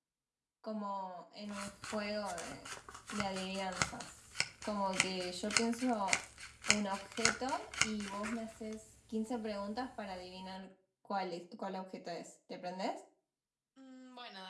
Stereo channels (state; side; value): identical; both; correlation 1.00